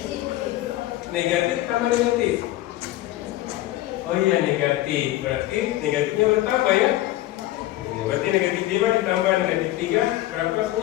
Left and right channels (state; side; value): quieter; right; 15.7 dB